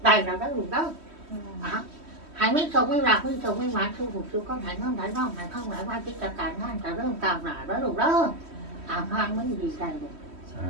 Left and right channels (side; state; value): left; late; 3.1 ms